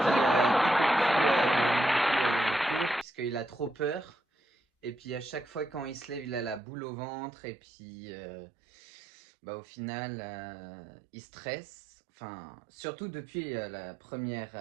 en cours puisqu'il a trop peur. Et puis à chaque fois quand il se lève, il a la boule au ventre. Et puis au final, il stresse. Enfin, surtout depuis la première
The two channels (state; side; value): drops out; left; at 6.6 s